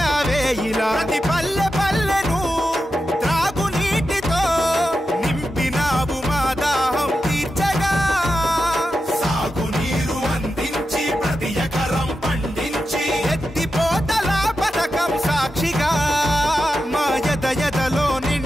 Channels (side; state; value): both; normal; correlation 0.90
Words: ప్రతి పల్లె పల్లెను త్రాగునీటితో నింపినావు మా దాహం తీర్చగా. సాగునీరు అందించి ప్రతి ఎకరం పండించి ఎత్తిపోతల పథకం సాక్షిగా మా ఎదలో